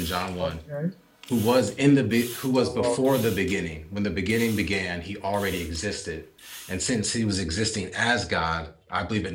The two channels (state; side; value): identical; both; correlation 1.00